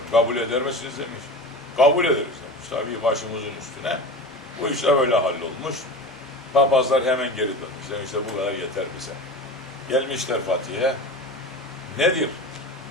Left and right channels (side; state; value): both; normal; correlation 0.31